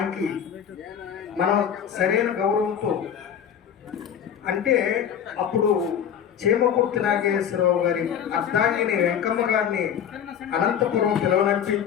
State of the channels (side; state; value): right; quieter; 8.6 dB